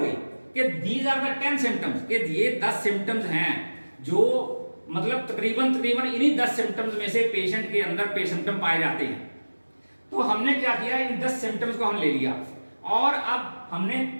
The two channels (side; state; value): both; inverted; correlation -1.00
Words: कि दीज आर द 10 सिम्टम्स, कि ये 10 सिम्टम्स हैं जो मतलब तकरीबन इन्हीं 10 सिम्टम्स में से पेशेंट के अंदर सिम्टम पाए जाते हैं। तो हमने क्या किया, इन 10 सिम्टम्स को हम ले लिया और अब हमने